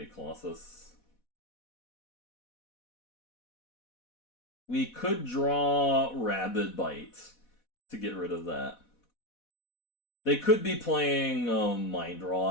Colossus. We could draw Rabid Bite to get rid of that. They could be playing Mind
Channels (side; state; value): right; late; 4.1 ms